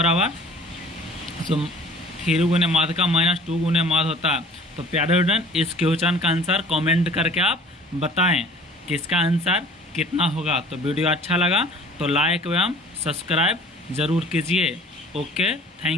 3 गुने माध्य का -2 गुने माध्य होता है। तो प्यारे स्टूडेंट, इस क्वेश्चन का आंसर कमेंट करके आप बताएं कि इसका आंसर कितना होगा। तो वीडियो अच्छा लगा तो लाइक एवं सब्सक्राइब जरूर कीजिए। ओके,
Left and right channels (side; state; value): both; normal; correlation 0.50